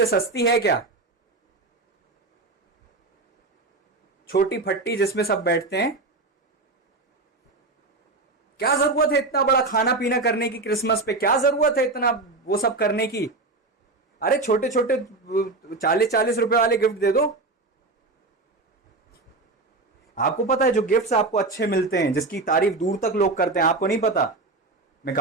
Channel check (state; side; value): quieter; left; 3.3 dB